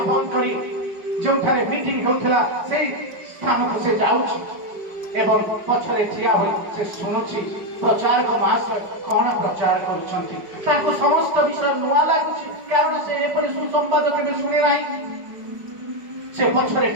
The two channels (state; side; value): late; left; 5.1 ms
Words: बंद करी जोठारे मीटिंग होउथला से स्थान को से जाउछि एवं पछरे ठिया होई से सुनुछि प्रचारक महाशय कौन प्रचार करुछंती ताको समस्त विषय नुआ लागुछि कारण से एपरि सुसंवाद केबे सुने नाही से पछरे